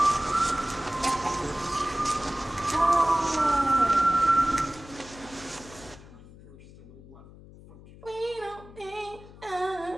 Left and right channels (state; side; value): noise; left; hum, 19 dB below the sound